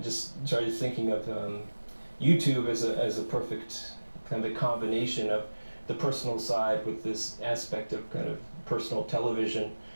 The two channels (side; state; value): both; inverted; correlation -1.00